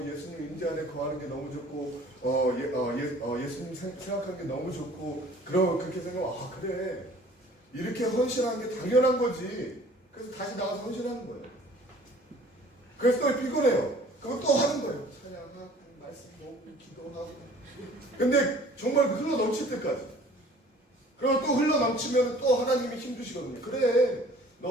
예수님 임재 안에 거하는 게 너무 좋고 예수님 생각하는 게 너무 좋고 그렇게 생각하면 그래 이렇게 헌신하는 게 당연한 거지. 그래서 다시 나가서 헌신하는 거예요. 그래서 또 피곤해요. 그거 또 하는 거예요. 찬양하고 말씀 보고 기도하고. 근데 정말 흘러 넘칠 때까지. 그리고 또 흘러 넘치면 또 하나님이 힘주시거든요. 그래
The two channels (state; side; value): normal; both; correlation 0.51